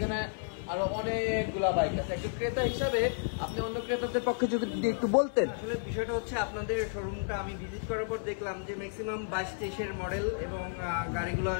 আরো অনেকগুলা বাইক আছে, একজন ক্রেতা হিসাবে আপনি অন্য ক্রেতাদের পক্ষে যদি একটু বলতেন। আসলে বিষয়টা হচ্ছে, আপনাদের শোরুমটা আমি ভিজিট করার পর দেখলাম যে ম্যাক্সিমাম 22-23-এর মডেল, এবং গাড়িগুলো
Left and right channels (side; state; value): right; silent; 56 dB below the other